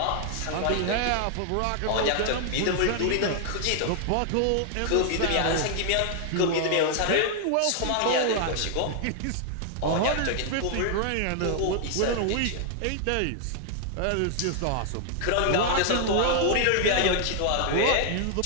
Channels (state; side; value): different; both; correlation 0.00